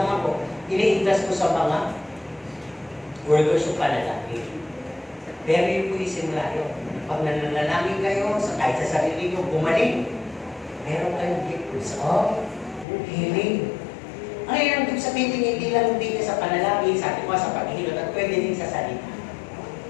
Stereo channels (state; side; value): drops out; right; at 12.9 s